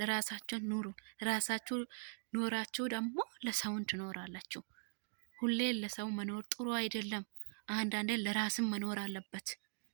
ኑሩ። ራሳችሁ ኖራችሁ ደግሞ ለሰውን ትኖራላችሁ። ሁሌ ለሰው መኖር ጥሩ አይደለም። አንዳንዴ ለራስም መኖር አለበት።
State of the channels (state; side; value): silent; left; digital silence